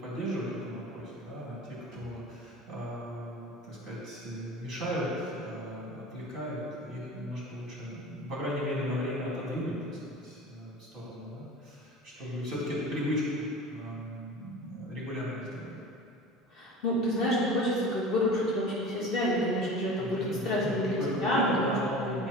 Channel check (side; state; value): both; normal; correlation 0.37